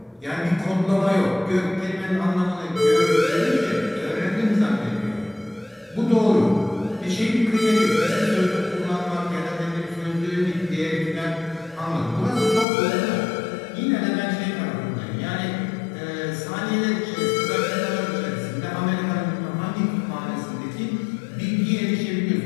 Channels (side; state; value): right; drops out; at 12.7 s